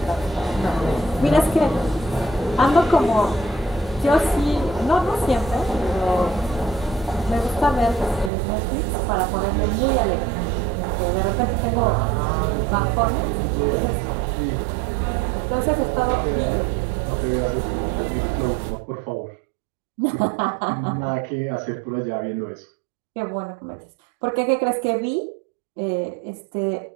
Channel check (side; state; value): left; drops out; at 8.3 s